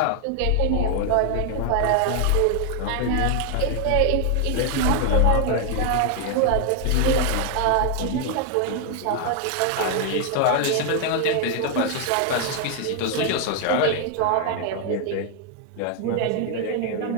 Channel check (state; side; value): different; both; correlation 0.00